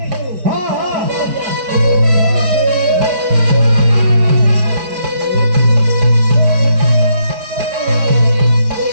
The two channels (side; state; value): left; late; 4.6 ms